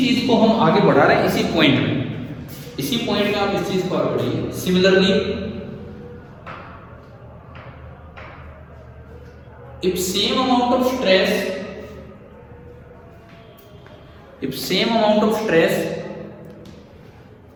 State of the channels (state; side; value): identical; both; correlation 1.00